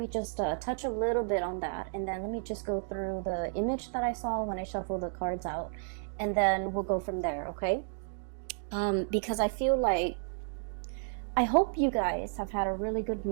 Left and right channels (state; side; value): silent; left; digital silence